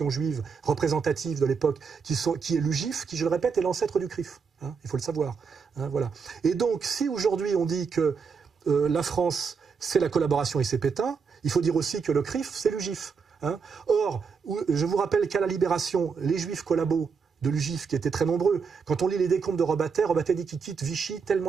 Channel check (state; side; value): quieter; left; 5.6 dB